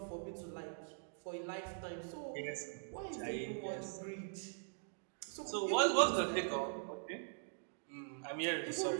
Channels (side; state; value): left; silent; digital silence